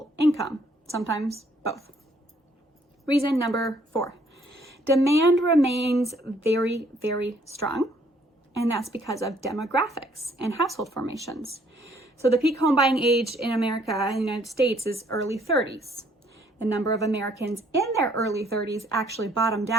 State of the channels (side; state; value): both; normal; correlation 0.64